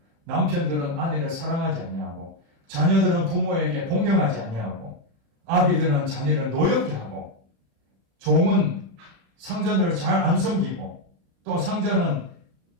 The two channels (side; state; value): left; late; 36 ms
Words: 남편들은 아내를 사랑하지 아니하고, 자녀들은 부모에게 공경하지 아니하고, 아비들은 자녀를 노엽게 하고, 종은 상전을 잘 안 섬기고, 또 상전은